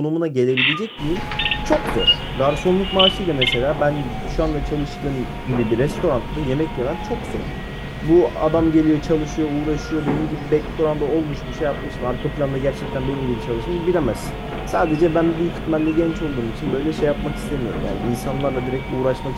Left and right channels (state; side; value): identical; both; correlation 1.00